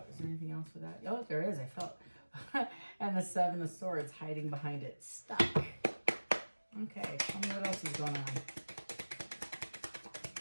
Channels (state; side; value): inverted; both; correlation -1.00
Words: Is there anything else with that? Oh, there is. I felt. And the Seven of Swords hiding behind it. Stuck. Okay, tell me what else is going on.